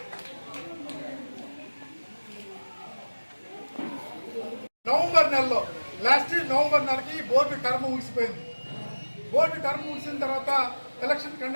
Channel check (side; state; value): both; inverted; correlation -1.00